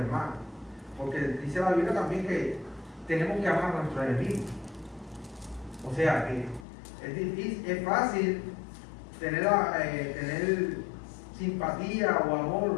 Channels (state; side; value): drops out; right; at 6.7 s